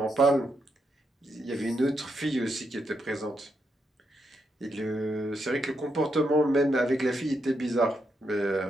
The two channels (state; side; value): normal; both; correlation 0.81